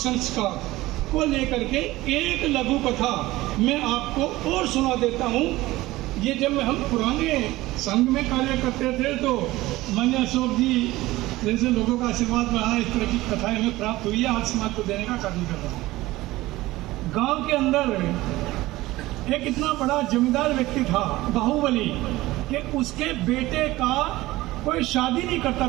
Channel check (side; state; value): left; quieter; 18.2 dB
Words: को लेकर के एक लघु कथा मैं आपको और सुना देता हूँ। ये जब हम पुराने संघ में कार्य करते थे तो मान्य अशोक जी जैसे लोगों का आशीर्वाद रहा, इस तरह की कथाएं हमें प्राप्त हुई है, आज समाज को देने का कार्य कर रहा हूँ। गांव के अंदर एक इतना बड़ा जमींदार व्यक्ति था बाहुबली, कि उसके बेटे का कोई शादी नहीं करता